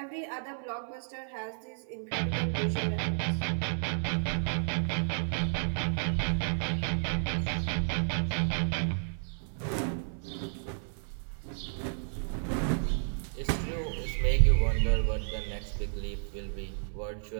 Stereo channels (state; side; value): silent; left; 57 dB below the other